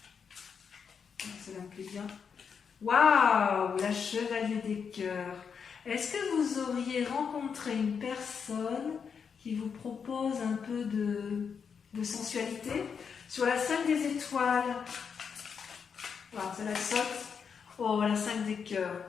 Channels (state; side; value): quieter; right; 6.5 dB